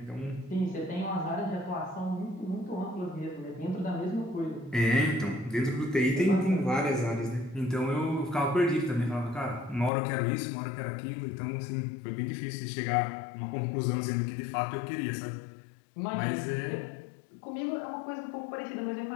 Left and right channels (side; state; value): right; drops out; at 9.9 s